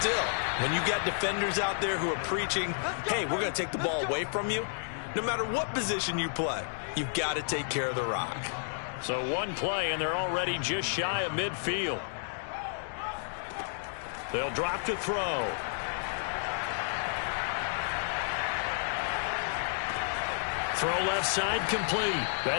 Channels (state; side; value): silent; right; digital silence